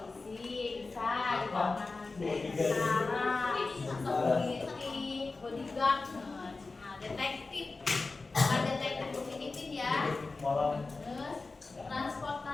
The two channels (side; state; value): right; quieter; 3.7 dB